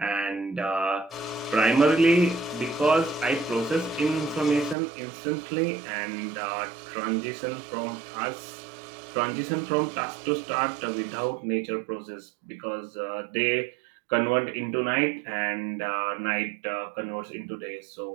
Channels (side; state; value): left; drops out; at 4.8 s